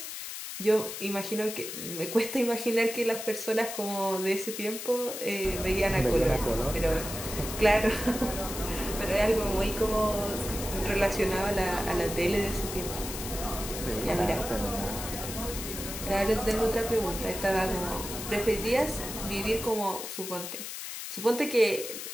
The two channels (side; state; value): left; noise; hiss, 7 dB below the sound